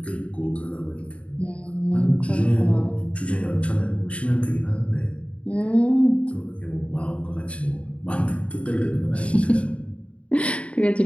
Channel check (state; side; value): late; right; 0.062 ms